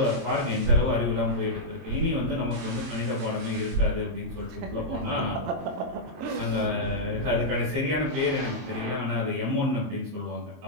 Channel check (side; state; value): left; late; 23 ms